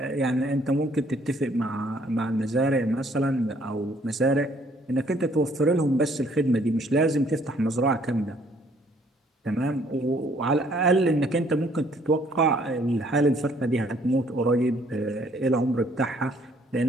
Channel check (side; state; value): both; normal; correlation 0.63